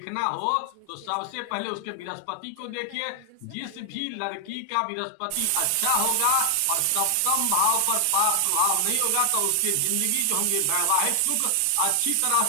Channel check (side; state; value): both; different; correlation 0.00